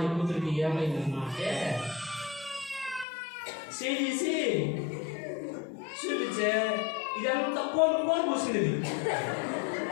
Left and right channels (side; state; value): right; drops out; at 3.1 s